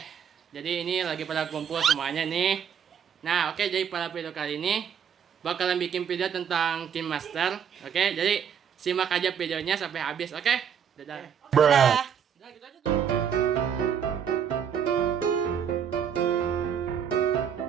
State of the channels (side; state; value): left; quieter; 7.9 dB